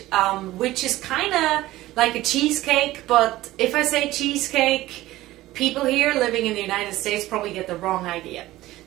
which is kind of like a cheesecake, but if I say cheesecake, people here living in the United States probably get the wrong idea.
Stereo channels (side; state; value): left; quieter; 16.6 dB